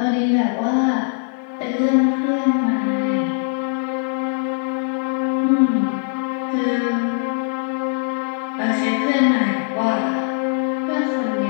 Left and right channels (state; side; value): silent; right; 62 dB below the other